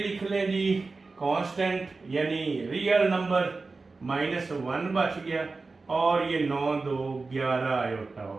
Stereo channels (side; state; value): left; quieter; 3.9 dB